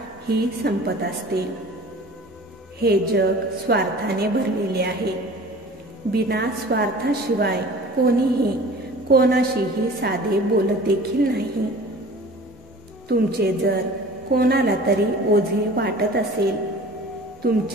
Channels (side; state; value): both; normal; correlation 0.43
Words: ही संपत असते. हे जग स्वार्थाने भरलेले आहे. बिना स्वार्थाशिवाय कोणीही कोणाशीही साधे बोलत देखील नाही. तुमचे जर कोणाला तरी ओझे वाटत असेल,